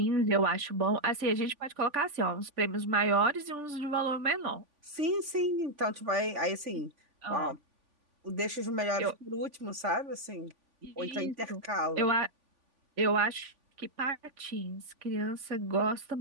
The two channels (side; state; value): left; late; 3.5 ms